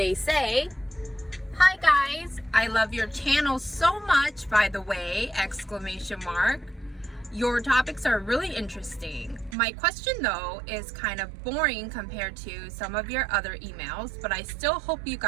say, "Hi guys, I love your channel so much, by the way, ! Your topics are really interesting. My question though is kind of boring compared to some of your other emails, but I still hope you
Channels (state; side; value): drops out; left; at 9.6 s